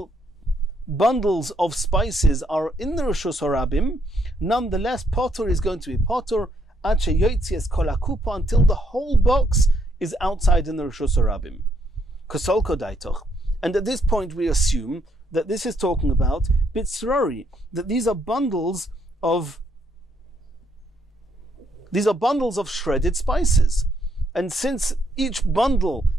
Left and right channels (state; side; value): normal; both; correlation 0.72